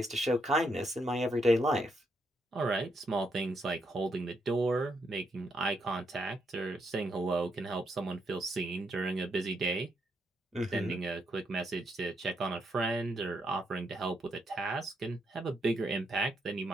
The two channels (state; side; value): normal; both; correlation 0.78